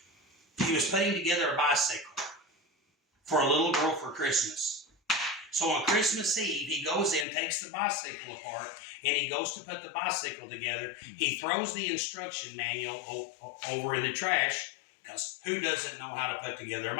he was putting together a bicycle for a little girl for Christmas. So on Christmas Eve, he goes in, takes the bicycle apart, and he goes to put the bicycle together. He throws the instruction manual over in the trash, because who doesn't know how to put together a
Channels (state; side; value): drops out; right; at 7.2 s